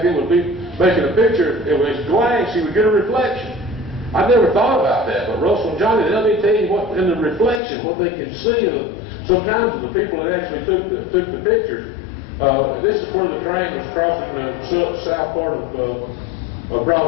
then would be making a picture, it was glance, you would get a reflection. I never thought about that, but Russell and Johnny, they'll be telling you what in the reflection, what they can see sometimes of the people that actually took the pictures. This is where the train was crossing the south part of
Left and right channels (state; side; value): drops out; right; at 7.6 s